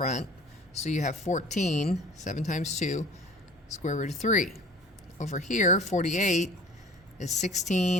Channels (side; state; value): both; normal; correlation 0.46